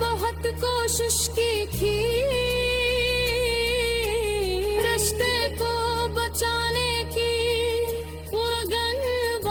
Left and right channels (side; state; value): both; identical; correlation 1.00